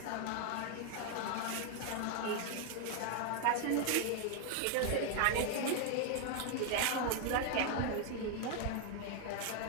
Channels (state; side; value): different; both; correlation 0.00